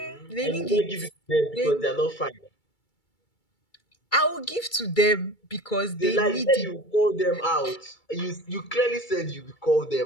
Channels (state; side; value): late; right; 2.3 ms